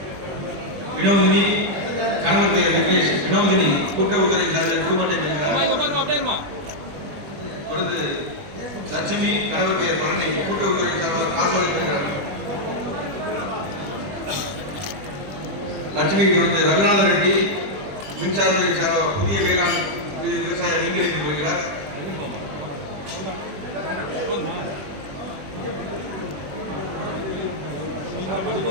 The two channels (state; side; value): late; left; 20 ms